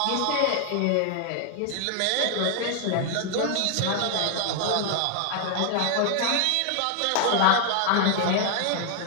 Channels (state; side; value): different; both; correlation 0.00